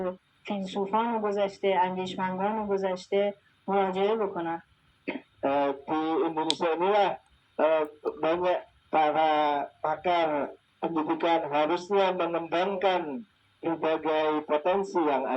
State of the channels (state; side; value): identical; both; correlation 1.00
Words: فیلسوفان گذشته، اندیشمندان گذشته مراجعه بکنن. Di Indonesia inilah banyak para pakar pendidikan harusnya mengembangkan berbagai potensi yang